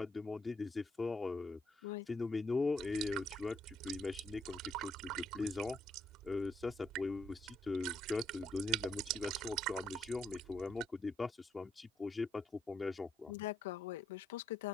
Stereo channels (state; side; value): normal; both; correlation 0.74